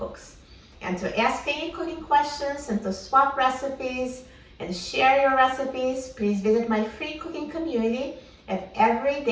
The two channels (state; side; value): identical; both; correlation 1.00